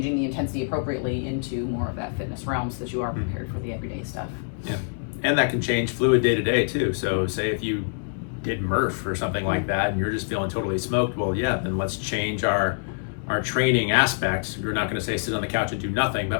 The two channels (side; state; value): right; silent; digital silence